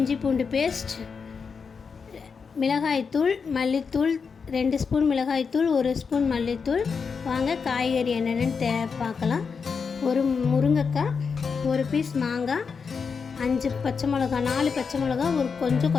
பூண்டு பேஸ்ட், மிளகாய்த்தூள், மல்லித்தூள் 2 ஸ்பூன் மிளகாய்த்தூள், 1 ஸ்பூன் மல்லித்தூள். வாங்க காய்கறி என்னென்னு பார்க்கலாம். ஒரு முருங்கைக்காய், ஒரு பீஸ் மாங்காய், 5 பச்சை மிளகா, 4 பச்சை மிளகா, ஒரு கொஞ்சம்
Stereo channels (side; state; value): right; quieter; 5.6 dB